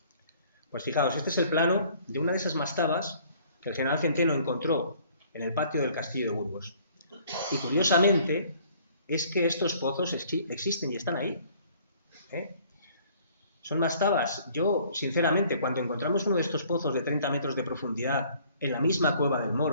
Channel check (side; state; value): both; inverted; correlation -0.57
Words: Pues fijaos, este es el plano de una de esas mastabas que el general Centeno encontró en el patio del castillo de Burgos. Y curiosamente es que estos pozos existen y están ahí. Son mastabas. Yo, sinceramente, cuando encontramos uno de estos pozos de 30 metros de profundidad en la misma cueva del